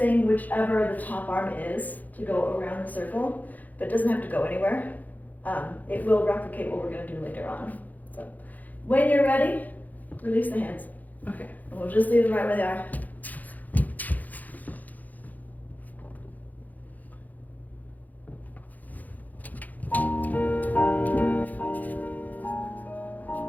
whichever the top arm is to go around the circle, but it doesn't have to go anywhere. It will replicate what we're going to do later on. So when you're ready, release the hands. Okay. And we'll just leave them right where they are.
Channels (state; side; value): late; right; 0.081 ms